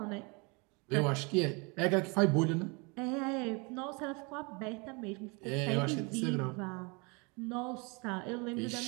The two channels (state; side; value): quieter; left; 30.3 dB